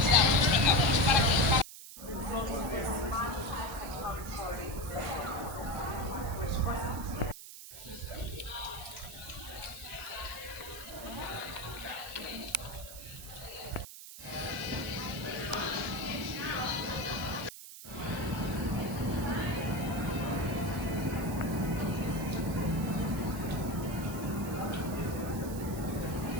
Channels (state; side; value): noise; right; hiss, 13 dB below the sound